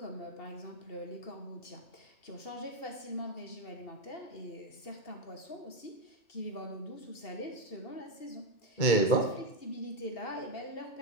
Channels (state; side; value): late; right; 2.7 ms